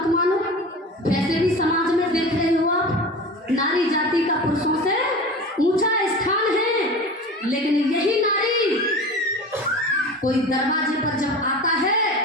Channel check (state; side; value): normal; both; correlation 0.34